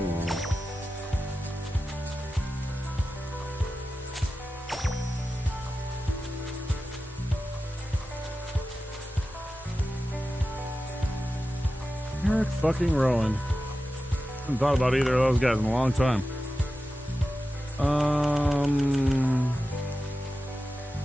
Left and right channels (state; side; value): normal; both; correlation 0.93